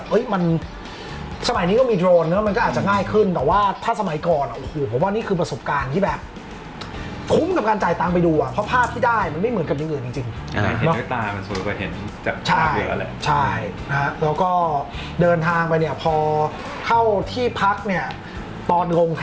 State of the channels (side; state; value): both; identical; correlation 1.00